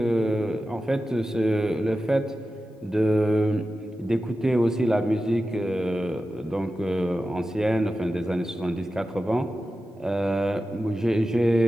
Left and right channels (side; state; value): both; normal; correlation 0.93